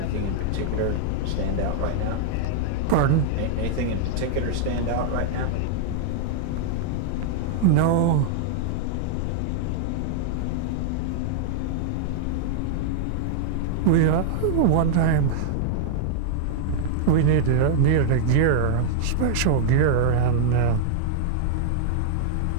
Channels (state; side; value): different; both; correlation -0.01